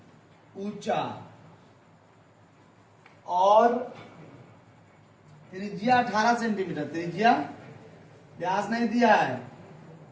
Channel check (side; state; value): both; identical; correlation 1.00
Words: ऊंचा और त्रिज्या 18 सेंटीमीटर, त्रिज्या व्यास नहीं दिया है,